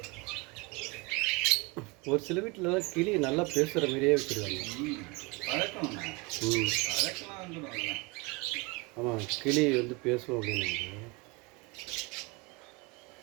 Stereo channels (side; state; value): left; quieter; 25.4 dB